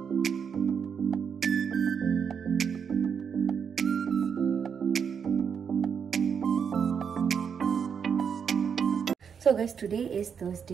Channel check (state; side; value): quieter; left; 6.9 dB